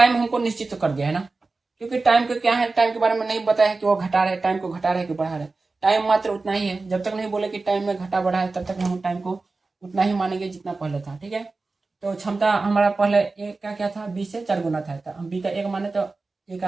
हमको निश्चित तो कर दिया है ना, क्योंकि टाइम को क्या है, टाइम के बारे में नहीं बताया है कि वो घटा रहे, टाइम को घटा रहे कि बढ़ा रहे, टाइम मात्र उतना ही है। जब तक नहीं बोले कि टाइम में घटा बढ़ा है तब तक हम टाइम को उतना ही मानेंगे जितना पहले था, ठीक है। तो क्षमता हमारा पहले एक का क्या था, 20 से 4 गुना था, तो हम बी का 1 माने तो ए का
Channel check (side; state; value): left; quieter; 3.7 dB